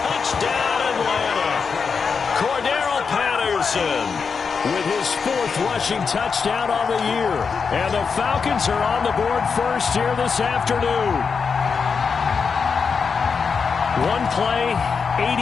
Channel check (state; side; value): quieter; right; 5.6 dB